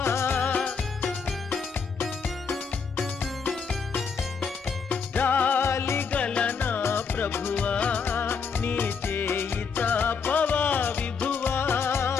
జాలిగల నా ప్రభువా నీ చేయి తాపవా విభువా.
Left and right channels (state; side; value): quieter; right; 5.6 dB